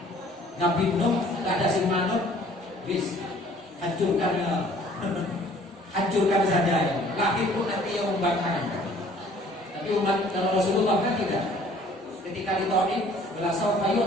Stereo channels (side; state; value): both; normal; correlation 0.55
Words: Nabi Nuh tidak ada simanut, bis hancurkan saja ya. Lahir pun nanti yang membakar. Tapi umat kalau Rasulullah kan tidak. Ketika ditolak belasau kayu